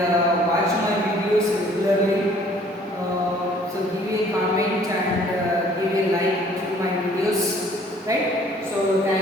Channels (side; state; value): both; normal; correlation 0.56